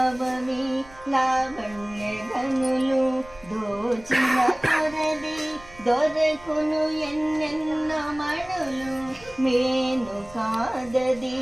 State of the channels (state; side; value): noise; right; rumble, 21 dB below the sound